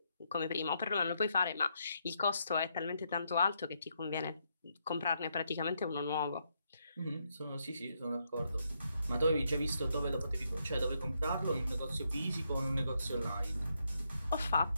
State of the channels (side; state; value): both; inverted; correlation -0.78